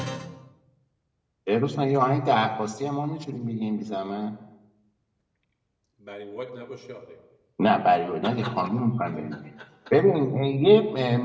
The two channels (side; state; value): both; identical; correlation 1.00